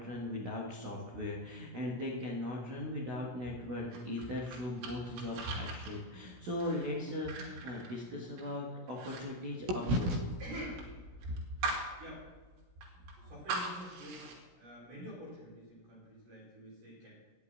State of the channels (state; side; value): late; left; 17 ms